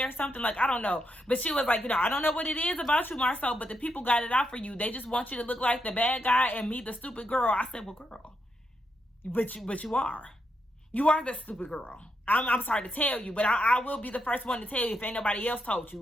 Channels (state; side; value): normal; both; correlation 0.81